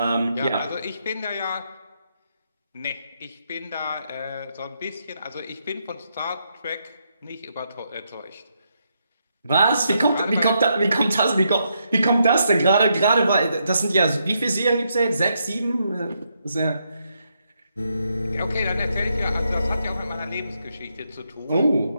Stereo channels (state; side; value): inverted; both; correlation -0.79